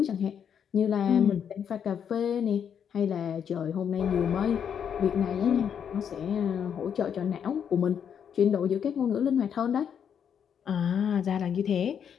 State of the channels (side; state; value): right; quieter; 8.0 dB